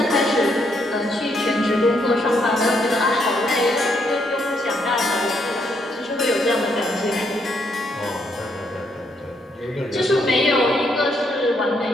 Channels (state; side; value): normal; both; correlation 0.74